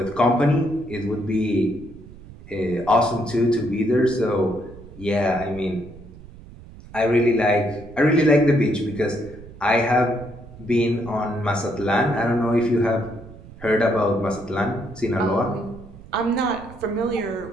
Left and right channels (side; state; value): right; noise; rumble, 18 dB below the sound